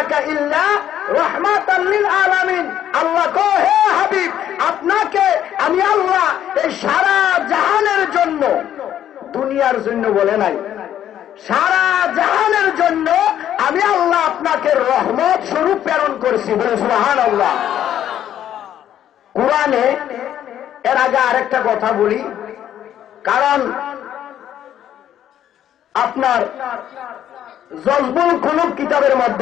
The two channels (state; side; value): quieter; right; 10.8 dB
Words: ইল্লা রাহমাতাল লিল আলামিন। আল্লাহ কয় হে হাবিব, আপনাকে আমি আল্লাহ এই সারা জাহানের জন্য, দুনিয়ার জন্য বলে নাই, সারা জাহানের জন্য আমি আল্লাহ আপনাকে রহমত স্বরূপ প্রেরণ করেছি। বলে সুবহানাল্লাহ। কুরআনে এর আগে আরেকটা কথা বলি, কারণ আপনার জজবুল কুলুব কিতাবের